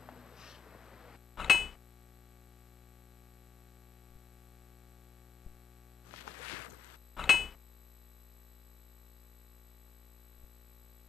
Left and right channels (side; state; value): right; quieter; 6.7 dB